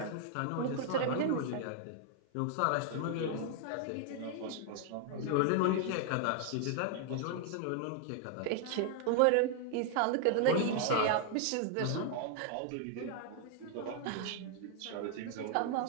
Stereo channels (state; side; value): different; both; correlation 0.00